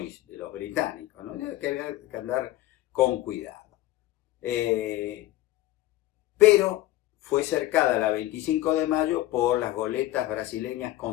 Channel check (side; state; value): right; quieter; 15.5 dB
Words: de los británicos, ¿no? Que había que andar con cuidado. Pero fue cercada la 25 de mayo por las goletas brasileñas